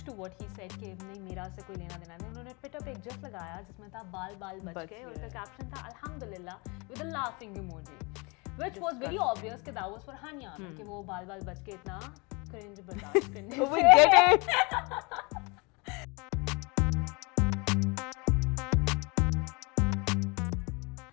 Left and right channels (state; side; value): quieter; right; 29.0 dB